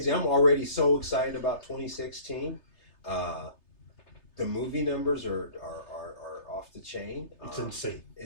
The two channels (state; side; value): late; right; 3.3 ms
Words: I'm already so excited about 2016. The movie numbers are off the chain. It's insane.